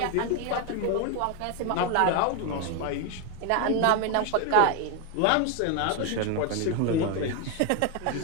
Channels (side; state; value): both; different; correlation 0.01